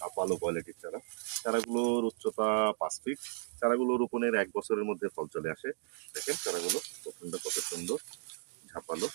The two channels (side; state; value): left; silent; 55 dB below the other